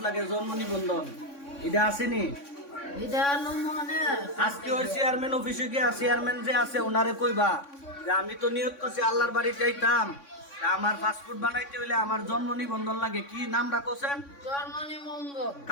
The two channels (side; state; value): right; late; 3.6 ms